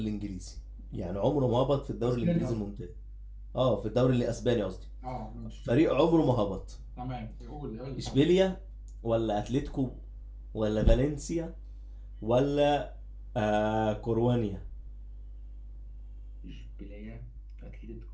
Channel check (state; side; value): identical; both; correlation 1.00